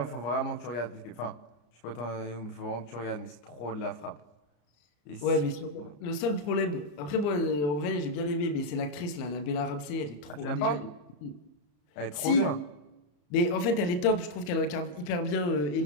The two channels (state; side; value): late; right; 34 ms